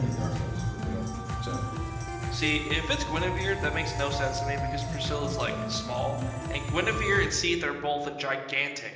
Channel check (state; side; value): identical; both; correlation 1.00